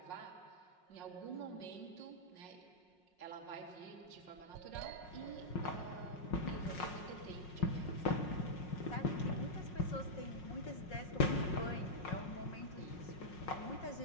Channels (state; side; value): late; right; 5.5 ms